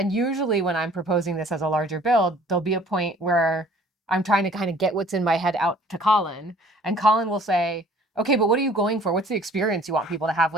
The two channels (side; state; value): both; normal; correlation 0.53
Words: usually when I'm proposing this as a larger build, there'll be a point where I'm trying to kind of get what's in my head out to Colin. And Colin will say, "Okay, but what are you going for? What's the experience you want people to have